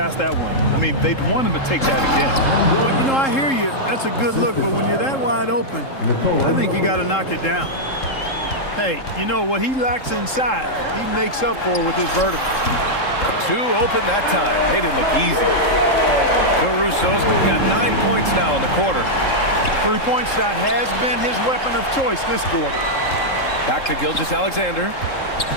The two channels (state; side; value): late; right; 3.7 ms